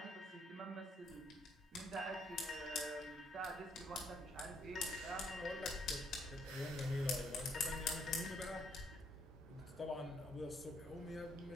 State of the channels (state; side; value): normal; both; correlation 0.70